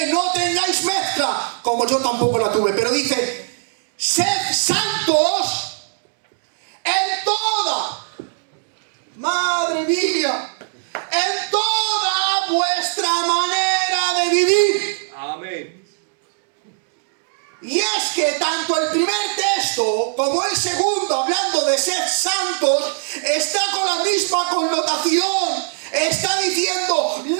No tengáis mezcla como yo tampoco la tuve. Pero dice: sed santos en toda, madre mía, en toda vuestra manera de vivir. Amén. Y es que tanto el primer texto como el segundo, hablando de ser santos, está con la misma connotación. Está diciendo:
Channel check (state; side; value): silent; left; digital silence